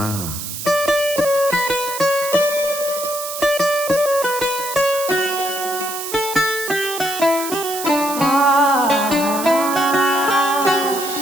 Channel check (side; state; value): right; noise; hiss, 7 dB below the sound